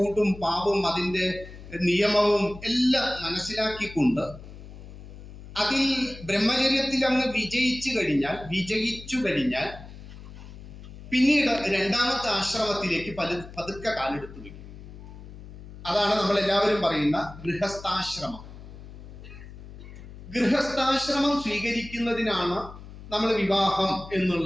ഊടും പാവും അതിന്റെ നിയമവും എല്ലാം മനസ്സിലാക്കിക്കൊണ്ട് അതിൽ ബ്രഹ്മചര്യത്തിൽ അങ്ങ് വിജയിച്ചു കഴിഞ്ഞാൽ പിന്നീട് രണ്ടാമത്തെ ആശ്രമത്തിലേക്ക് പതുക്കെ കാലെടുത്തു വയ്ക്കും. അതാണ് നമ്മൾ എല്ലാവരും പറയുന്ന ഗൃഹസ്ഥാശ്രമം. ഗൃഹസ്ഥാശ്രമം സ്വീകരിക്കുന്നതിനാണ് നമ്മൾ വിവാഹം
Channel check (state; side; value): noise; left; hum, 15 dB below the sound